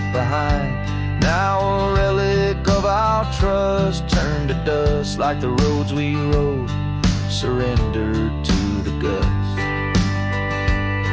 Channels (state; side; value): identical; both; correlation 1.00